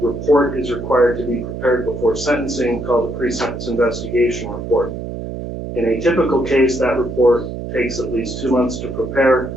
report is required to be prepared before sentencing called a pre-sentence investigation report. In a typical case, that report takes at least 2 months to prepare.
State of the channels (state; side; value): noise; right; hum, 7 dB below the sound